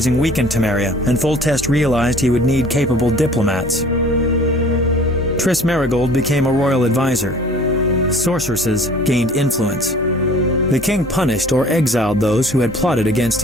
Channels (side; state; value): both; normal; correlation 0.49